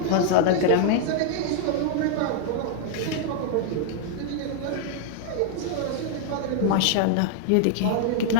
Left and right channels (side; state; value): both; different; correlation -0.01